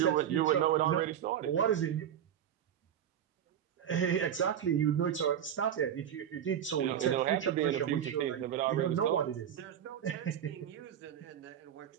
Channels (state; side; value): quieter; left; 9.7 dB